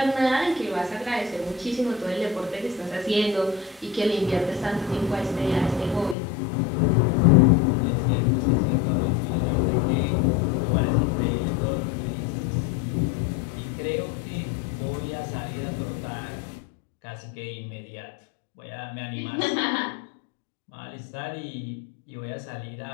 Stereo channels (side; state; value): right; drops out; at 6.2 s